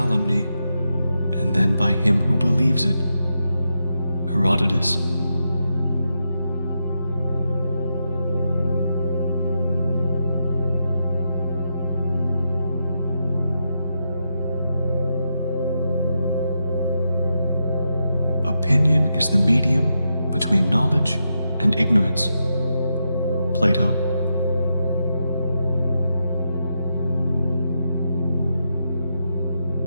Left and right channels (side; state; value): both; inverted; correlation -0.85